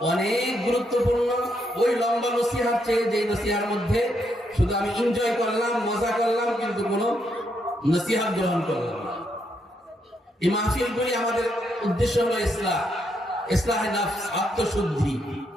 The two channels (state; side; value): normal; both; correlation 0.78